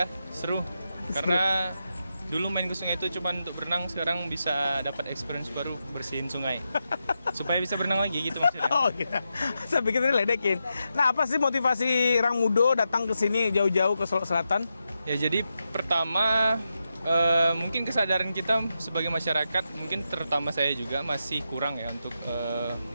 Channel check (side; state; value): both; inverted; correlation -0.87